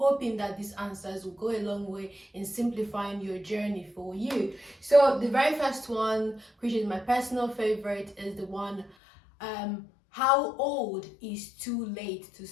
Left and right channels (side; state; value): right; drops out; at 9.0 s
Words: that these answers will go a long way in simplifying your journey for you. So the very first one, which is my personal favorite, is the one, how old is too late to